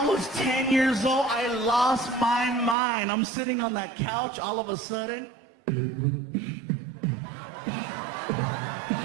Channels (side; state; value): left; drops out; at 2.8 s